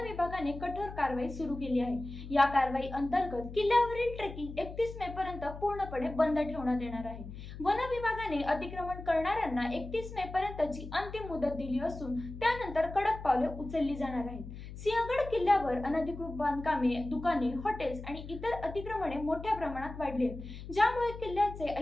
विभागाने कठोर कारवाई सुरू केली आहे। या कारवाई अंतर्गत किल्ल्यावरील ट्रेकिंग 31 मे पर्यंत पूर्णपणे बंद ठेवण्यात येणार आहे। वन विभागाने अतिक्रमण करणाऱ्यांना 31 मे पर्यंतची अंतिम मुदत दिली असून त्यानंतर कडक पावले उचलली जाणार आहेत। सिंहगड किल्ल्यावर अनधिकृत बांधकामे, दुकाने, हॉटेल्स आणि इतर अतिक्रमणे मोठ्या प्रमाणात वाढली आहेत, ज्यामुळे किल्ल्याचे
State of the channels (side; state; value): left; noise; hum, 11 dB below the sound